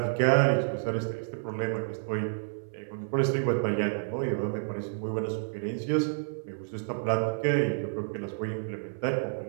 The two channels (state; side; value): silent; left; 58 dB below the other